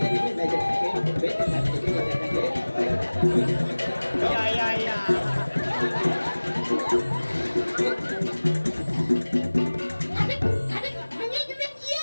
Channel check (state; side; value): inverted; both; correlation -1.00